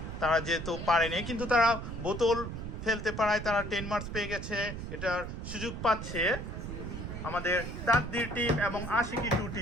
তারা যেহেতু পারেনি, কিন্তু তারা বোতল ফেলতে পারায় তারা 10 মার্কস পেয়ে গেছে। এটার সুযোগ পাচ্ছে আমাদের তাকদীর টিম এবং আশিকি টু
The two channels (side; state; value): right; noise; rumble, 7 dB below the sound